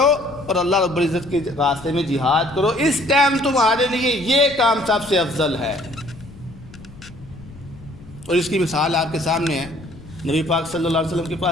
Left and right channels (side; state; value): left; noise; rumble, 18 dB below the sound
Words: اور اللہ رب العزت کے راستے میں جہاد کرو۔ اس ٹائم تمہارے لیے یہ کام سب سے افضل ہے۔ اور اس کی مثال آپ کے سامنے ہے۔ نبی پاک صلی اللہ علیہ وسلم کے